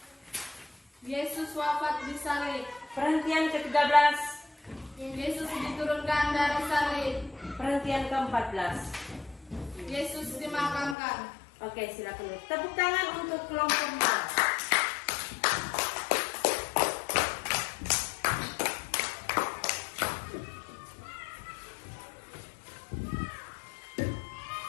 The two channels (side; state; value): right; drops out; at 11.0 s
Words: Yesus wafat di salib. Perhentian ke-13. Yesus diturunkan dari salib. Perhentian ke-14. Yesus dimakamkan. Oke, silakan. Tepuk tangan untuk kelompok A.